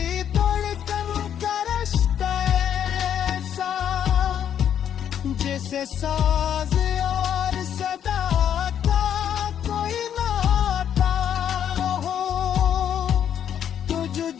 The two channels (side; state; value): right; quieter; 9.3 dB